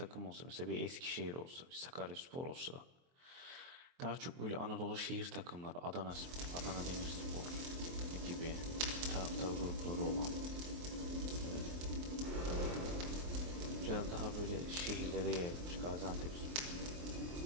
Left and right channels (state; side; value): late; left; 23 ms